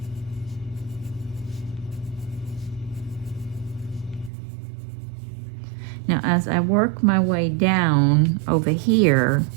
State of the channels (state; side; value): drops out; left; at 4.3 s